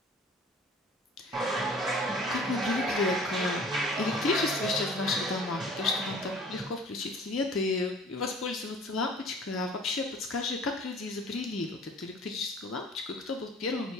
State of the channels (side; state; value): both; normal; correlation 0.48